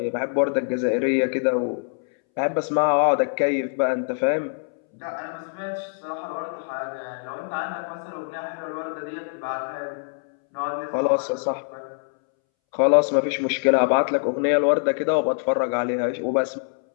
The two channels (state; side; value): silent; right; 62 dB below the other